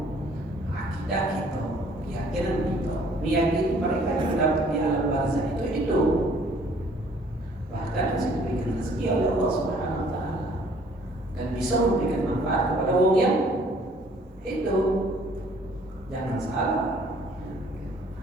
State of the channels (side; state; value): both; normal; correlation 0.58